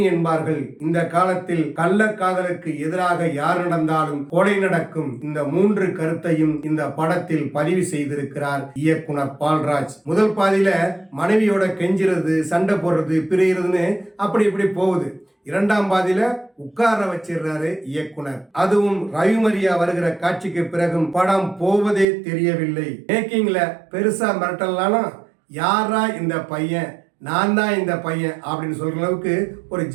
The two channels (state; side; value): drops out; left; at 22.1 s